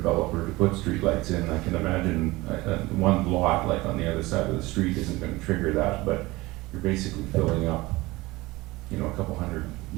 to put streetlights in. I can imagine one lot, like on the other side of the street, isn't going to trigger that, but you're basically filling up, a couple hundred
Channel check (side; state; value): left; quieter; 20.7 dB